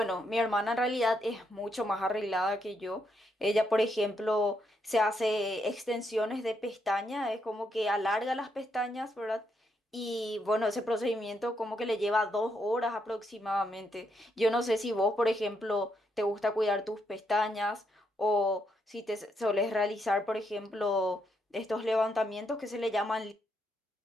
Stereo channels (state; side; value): normal; both; correlation 0.78